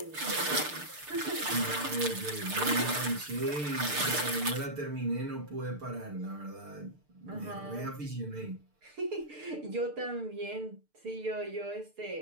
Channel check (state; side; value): late; left; 6.7 ms